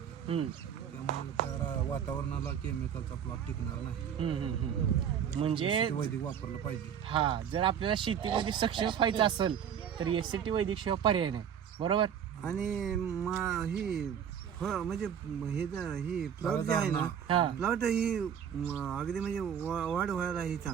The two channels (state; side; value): quieter; left; 8.5 dB